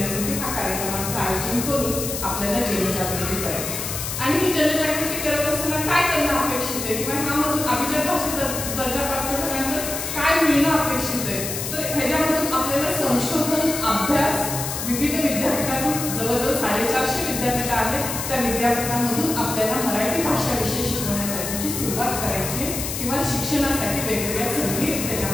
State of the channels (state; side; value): noise; left; hiss, 5 dB below the sound